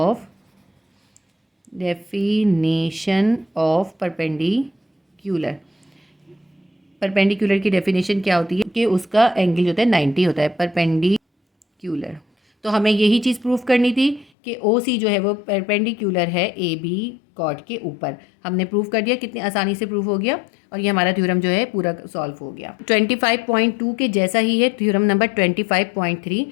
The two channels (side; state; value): right; drops out; at 14.2 s